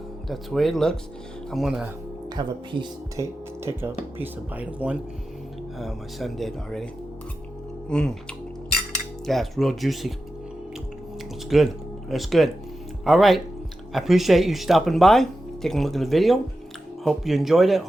way it looks. I'm gonna have a piece, take a piece of bite of one. My son did already. Yeah, it's real juicy. It's good. It's good. All right. I appreciate you stopping by, taking a look at the video. Hope you enjoyed it.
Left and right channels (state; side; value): normal; both; correlation 0.92